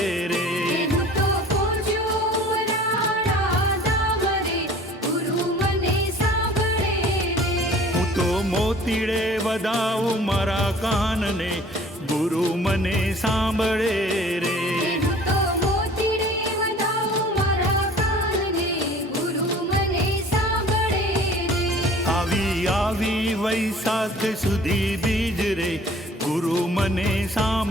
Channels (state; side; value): normal; both; correlation 0.49